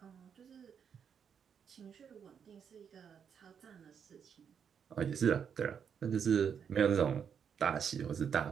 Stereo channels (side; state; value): left; quieter; 7.4 dB